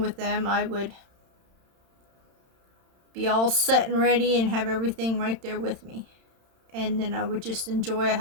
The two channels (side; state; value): left; late; 31 ms